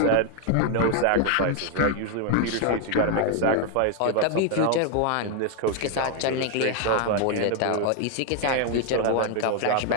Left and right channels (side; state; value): both; different; correlation 0.00